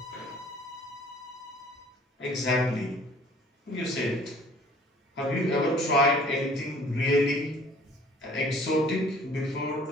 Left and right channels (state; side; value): normal; both; correlation 0.53